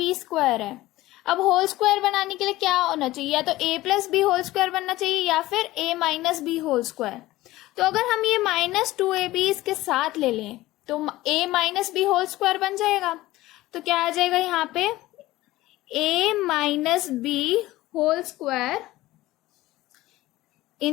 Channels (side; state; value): right; quieter; 17.3 dB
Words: है। अब होल स्क्वायर बनाने के लिए क्या होना चाहिए, या तो a + b होल स्क्वायर बनना चाहिए या फिर a - b होल स्क्वायर। तो अगर हम ये -2ab इसके साथ ले लें तो a - b होल स्क्वायर बन जाएगा। तो क्या आ जाएगा यहाँ पे, a - b होल स्क्वायर,